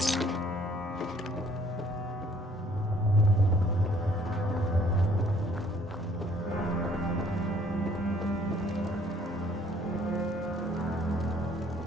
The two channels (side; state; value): both; normal; correlation 0.60